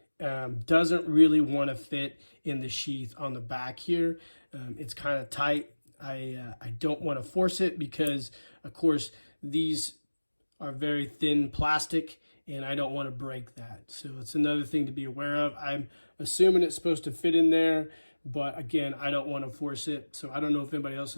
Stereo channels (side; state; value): both; inverted; correlation -1.00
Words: doesn't really want to fit in the sheath on the back here. It's kind of tight. I don't want to force it because, of course, these are very thin plastic, and I don't want to break that. So it's another thing to be aware of. I'm assuming it's supposed to fit in there, but again, I don't want to force it. So I don't know if anybody else